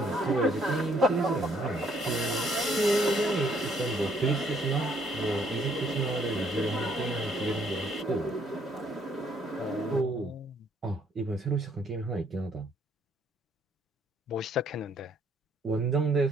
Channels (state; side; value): normal; both; correlation 0.66